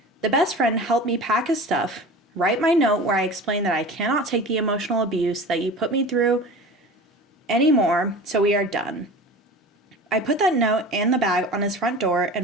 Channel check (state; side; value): normal; both; correlation 0.36